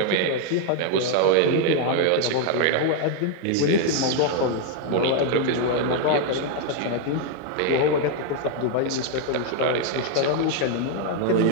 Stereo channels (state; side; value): different; both; correlation 0.01